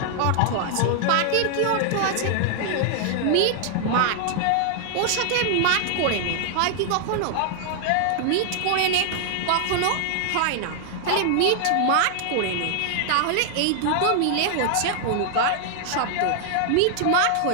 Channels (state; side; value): different; both; correlation 0.00